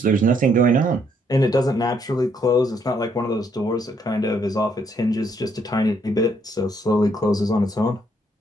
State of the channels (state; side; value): normal; both; correlation 0.70